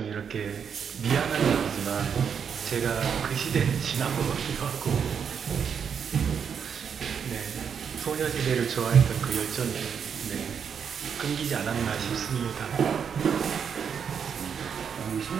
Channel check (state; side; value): quieter; left; 7.2 dB